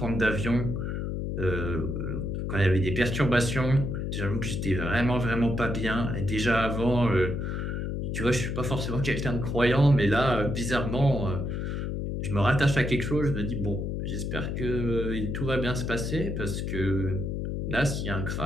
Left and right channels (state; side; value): noise; left; hum, 2 dB below the sound